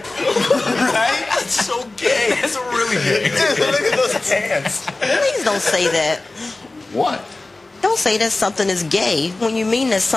That's so gay. That's really gay. Look at those pants. Please don't say that. What? Don't say that something is gay when you mean that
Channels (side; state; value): right; quieter; 3.1 dB